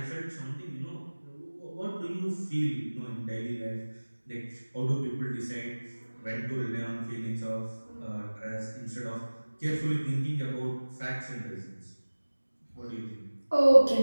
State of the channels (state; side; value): inverted; both; correlation -1.00